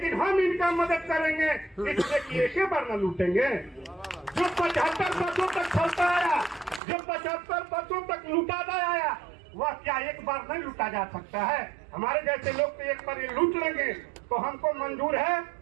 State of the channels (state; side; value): drops out; left; at 6.8 s